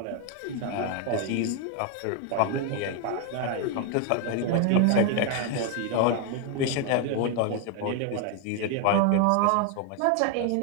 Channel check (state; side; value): different; both; correlation 0.01